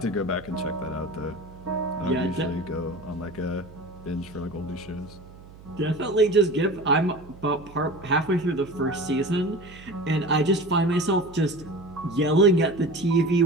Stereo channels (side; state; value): right; noise; hum, 20 dB below the sound